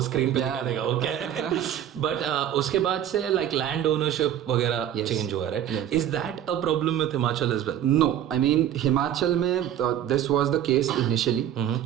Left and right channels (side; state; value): left; quieter; 10.6 dB